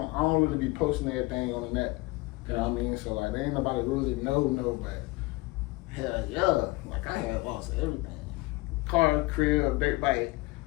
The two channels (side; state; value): right; quieter; 22.8 dB